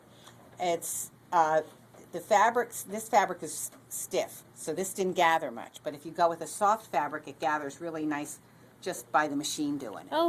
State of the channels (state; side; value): identical; both; correlation 1.00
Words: It's the fabrics. This fabric is stiff, so this didn't gather much. But if you go with a soft fabric, it gathers really nice just by the machine doing it.